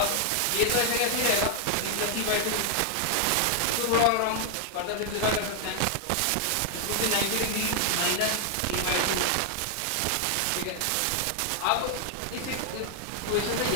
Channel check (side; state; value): both; different; correlation 0.00